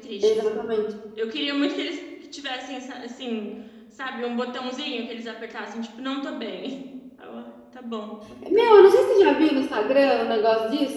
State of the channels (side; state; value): both; identical; correlation 1.00